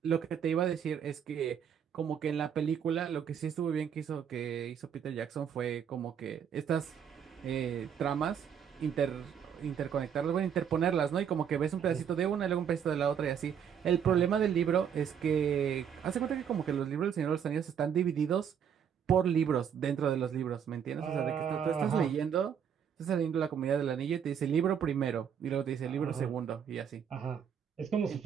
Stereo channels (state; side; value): quieter; left; 8.1 dB